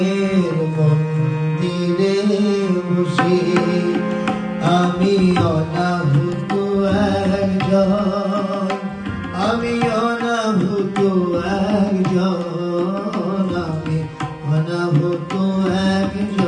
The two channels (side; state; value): both; identical; correlation 1.00